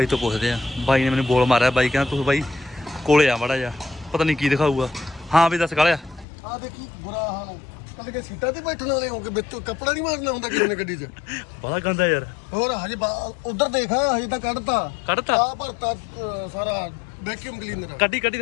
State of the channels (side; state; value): right; drops out; at 6.2 s